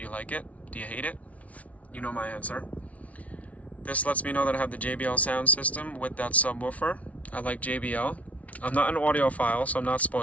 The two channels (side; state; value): right; late; 0.067 ms